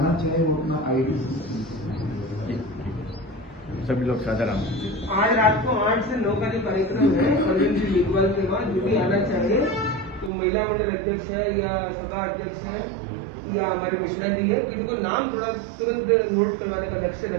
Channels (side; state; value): left; drops out; at 10.3 s